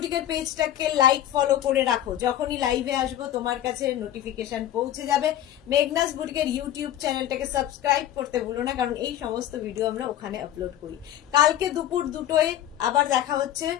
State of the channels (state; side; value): quieter; right; 12.0 dB